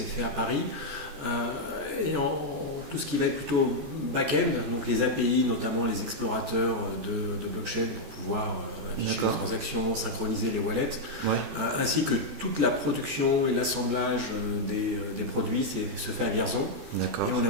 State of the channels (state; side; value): late; left; 14 ms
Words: fait à Paris. Tout ce qui va être plutôt back-end, donc les API, notamment les explorateurs de blockchain pour pouvoir afficher les D'accord. transactions, synchroniser les wallets, Ouais. ainsi que toute la production et l'assemblage des produits se fait à Vierzon. D'accord. Et on a